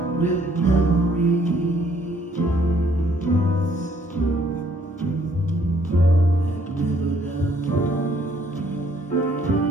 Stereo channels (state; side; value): normal; both; correlation 0.64